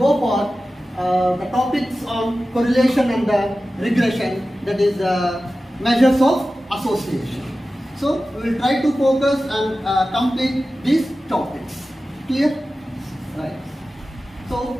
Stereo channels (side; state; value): both; normal; correlation 0.94